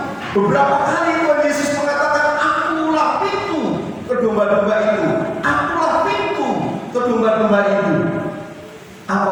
Beberapa kali Tuhan Yesus mengatakan, akulah pintu ke domba-domba itu. Akulah pintu ke domba-domba itu.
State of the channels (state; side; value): identical; both; correlation 1.00